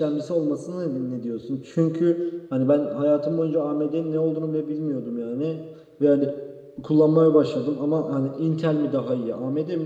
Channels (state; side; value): identical; both; correlation 1.00